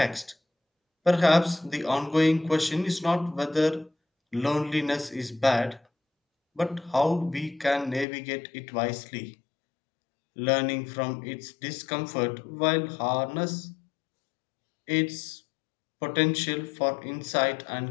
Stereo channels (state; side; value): drops out; right; at 8.1 s